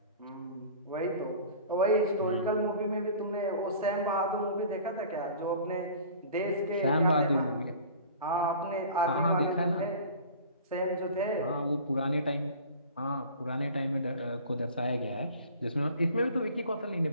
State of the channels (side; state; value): both; inverted; correlation -0.43